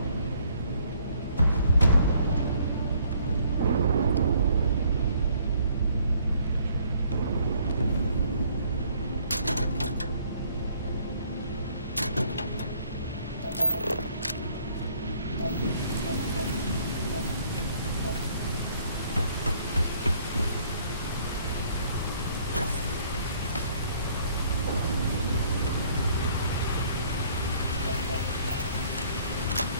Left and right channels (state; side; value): inverted; both; correlation -0.62